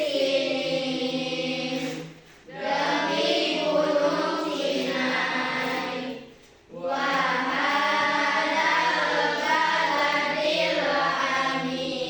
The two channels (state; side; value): identical; both; correlation 1.00